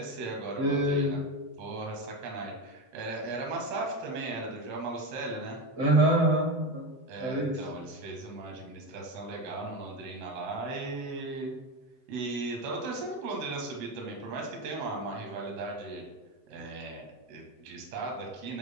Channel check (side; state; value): left; late; 7.9 ms